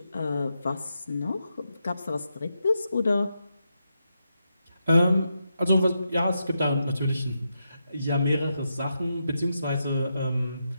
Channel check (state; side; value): inverted; both; correlation -0.84